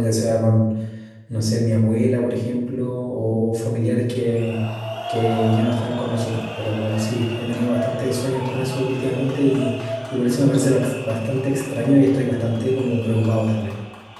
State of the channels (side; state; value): both; identical; correlation 1.00